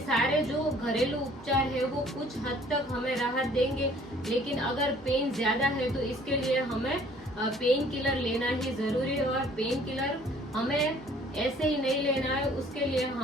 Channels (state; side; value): normal; both; correlation 0.56